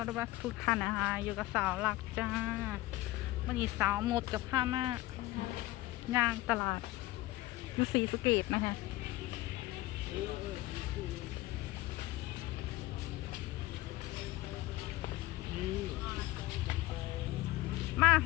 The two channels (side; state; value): right; quieter; 17.9 dB